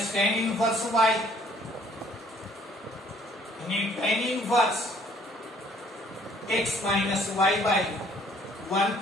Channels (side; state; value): both; normal; correlation 0.59